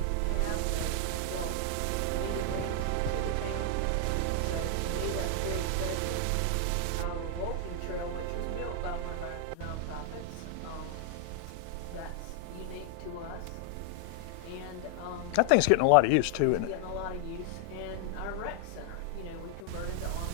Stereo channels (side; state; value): both; different; correlation 0.00